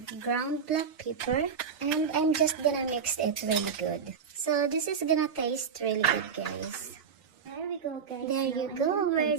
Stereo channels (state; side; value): quieter; left; 6.5 dB